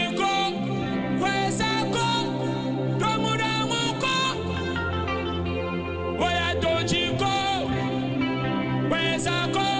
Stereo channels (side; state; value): both; identical; correlation 1.00